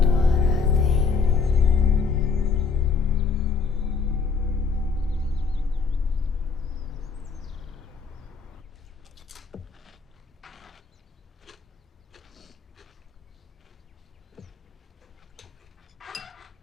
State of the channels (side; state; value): right; quieter; 5.2 dB